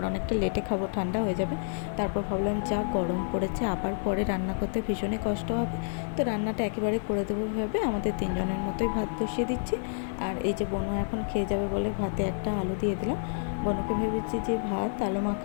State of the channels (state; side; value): silent; right; digital silence